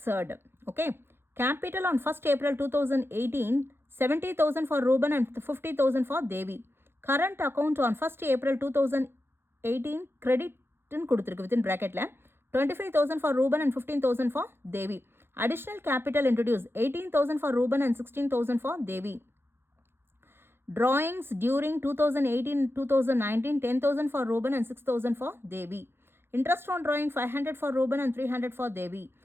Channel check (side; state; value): left; late; 0.11 ms